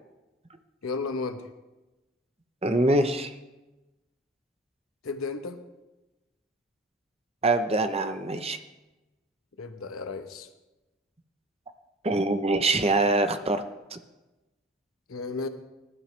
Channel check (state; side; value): normal; both; correlation 0.40